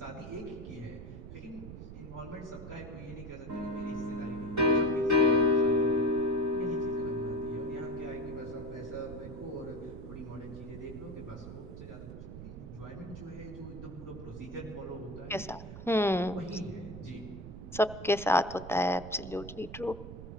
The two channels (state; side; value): noise; right; rumble, 11 dB below the sound